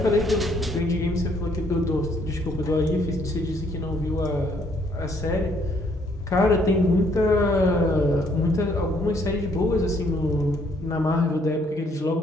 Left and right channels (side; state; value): both; normal; correlation 0.67